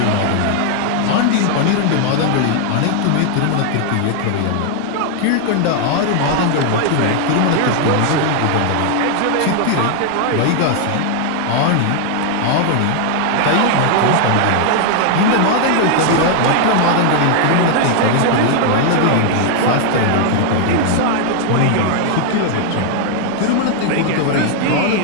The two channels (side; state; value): both; different; correlation 0.00